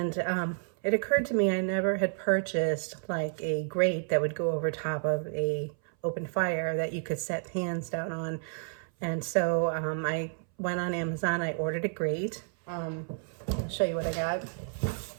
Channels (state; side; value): silent; left; 57 dB below the other